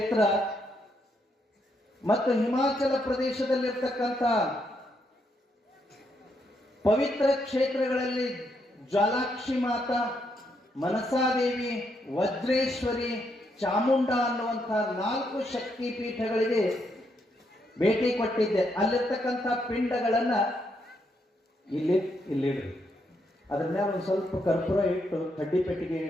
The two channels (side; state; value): both; normal; correlation 0.77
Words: ಮತ್ತು ಹಿಮಾಚಲ ಪ್ರದೇಶದಲ್ಲಿರ್ತಕ್ಕಂಥ ಪವಿತ್ರ ಕ್ಷೇತ್ರಗಳಲ್ಲಿ ಜ್ವಾಲಾಕ್ಷಿ ಮಾತಾ, ಮನಸಾದೇವಿ, ವಜ್ರೇಶ್ವರಿ, ಚಾಮುಂಡ ಅನ್ನುವಂತಹ 4 ಶಕ್ತಿ ಪೀಠಗಳಿಗೆ ಭೇಟಿ ಕೊಟ್ಟಿದ್ದೆ. ಅಲ್ಲಿರ್ತಕ್ಕಂಥ ಪಿಂಡಗಳನ್ನ ಇಲ್ಲಿಡ್ರಿ, ಅದ್ರ ಮೇಲೆ ಒಂದು ಸ್ವಲ್ಪ ಕರ್ಪೂರ ಇಟ್ಟು ಕಡ್ಡಿ ಪೆಟ್ಟಿಗೆ